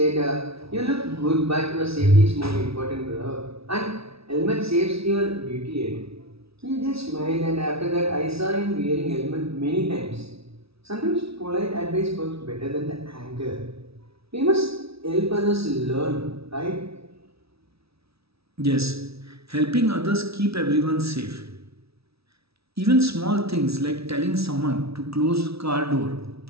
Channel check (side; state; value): left; late; 0.77 ms